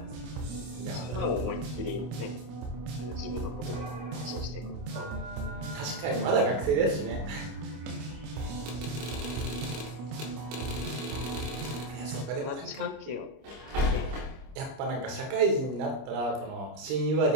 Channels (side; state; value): left; late; 25 ms